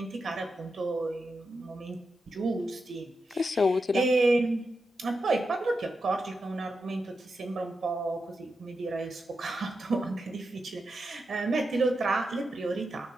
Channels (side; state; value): both; normal; correlation 0.88